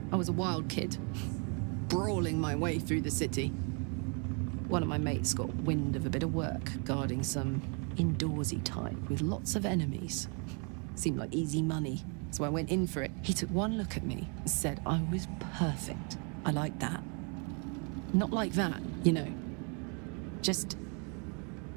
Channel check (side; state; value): left; quieter; 36.7 dB